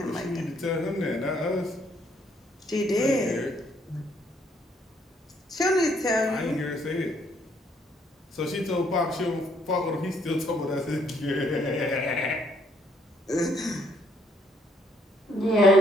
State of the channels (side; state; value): both; normal; correlation 0.68